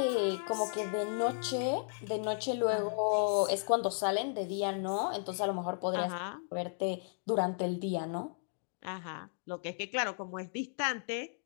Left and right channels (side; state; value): right; silent; digital silence